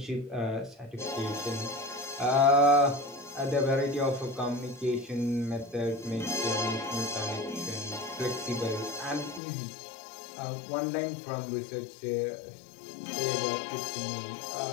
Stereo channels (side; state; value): right; drops out; at 9.4 s